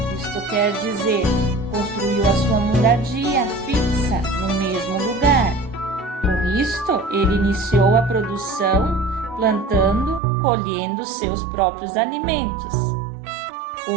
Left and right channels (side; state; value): left; drops out; at 10.2 s